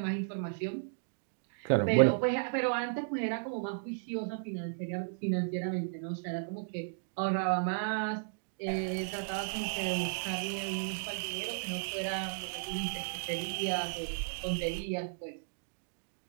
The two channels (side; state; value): left; silent; digital silence